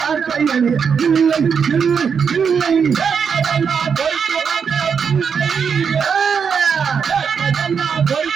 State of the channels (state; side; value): quieter; left; 6.5 dB